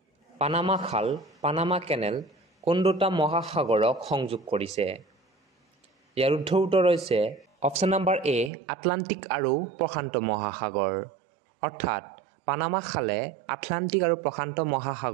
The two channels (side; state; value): left; drops out; at 8.5 s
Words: পানামা খাল, পানামা কেনেল কোন দুটা মহাসাগৰক সংযোগ কৰিছে? ইয়াৰ শুদ্ধ উত্তৰ হৈছে অপচন নম্বৰ এ, আটলান্টিক আৰু প্ৰশান্ত মহাসাগৰ, অৰ্থাৎ পানামা খালে আটলান্টিক আৰু প্ৰশান্ত